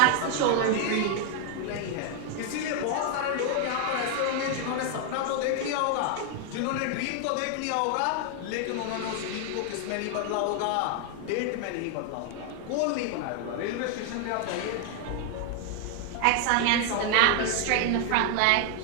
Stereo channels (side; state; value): both; different; correlation 0.00